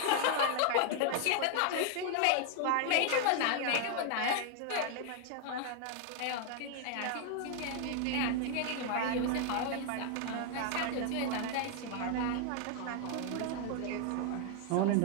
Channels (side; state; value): both; different; correlation 0.00